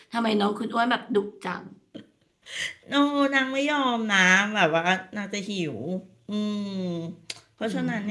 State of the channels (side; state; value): both; identical; correlation 1.00